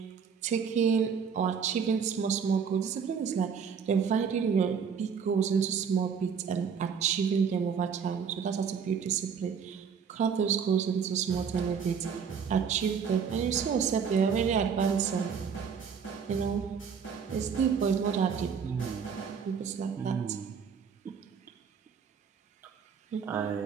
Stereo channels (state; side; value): quieter; left; 6.7 dB